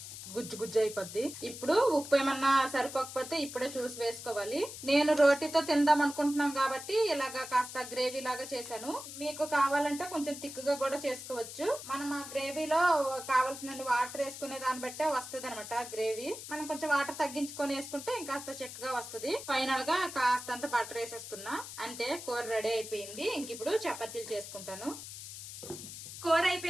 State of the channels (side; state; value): left; noise; hiss, 11 dB below the sound